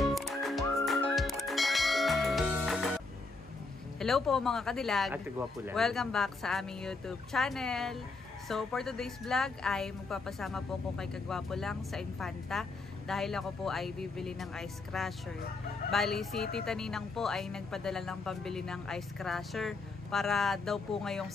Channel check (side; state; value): right; quieter; 3.7 dB